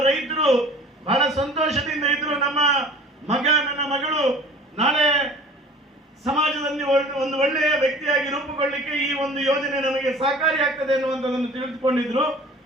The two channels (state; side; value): normal; both; correlation 0.45